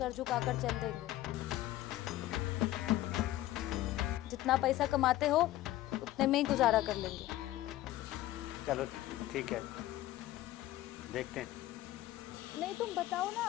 झुकाकर चल देंगे। जितना पैसा कमाते हो उतने में ही गुजारा कर लेंगे। चलो ठीक है, देखते हैं। नहीं, तुम बताओ ना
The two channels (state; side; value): quieter; right; 15.1 dB